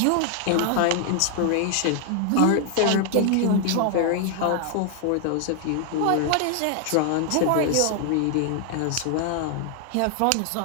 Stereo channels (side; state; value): both; different; correlation 0.00